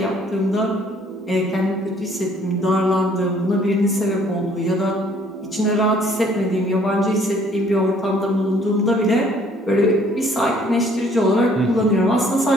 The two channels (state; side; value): normal; both; correlation 0.60